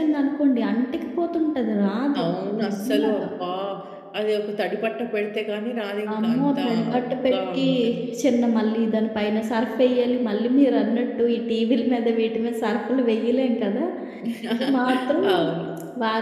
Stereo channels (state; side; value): identical; both; correlation 1.00